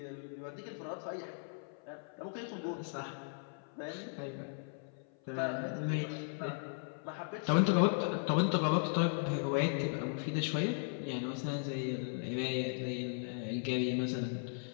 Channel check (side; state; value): right; silent; 53 dB below the other